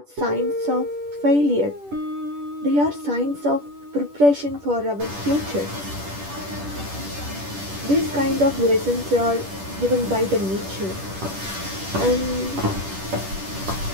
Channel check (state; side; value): late; left; 10 ms